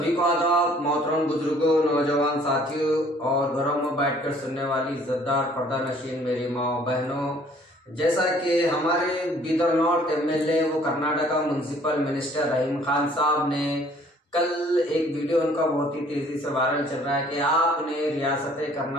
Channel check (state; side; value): normal; both; correlation 0.57